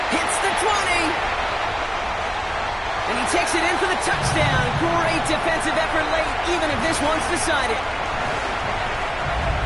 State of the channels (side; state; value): both; identical; correlation 1.00